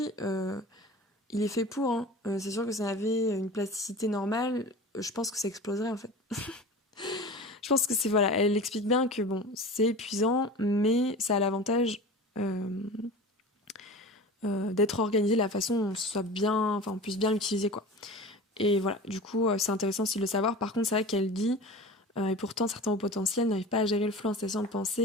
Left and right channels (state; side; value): normal; both; correlation 0.35